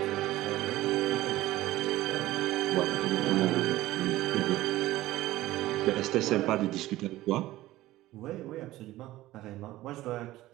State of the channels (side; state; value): left; quieter; 16.4 dB